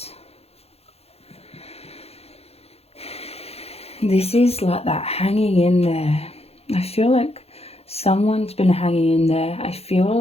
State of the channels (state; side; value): late; right; 0.29 ms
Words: This is like that hanging in there. I feel like someone's been hanging in there. I feel